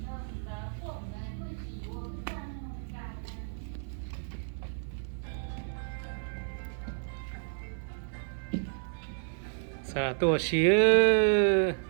Sarah 多些，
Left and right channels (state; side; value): silent; left; 57 dB below the other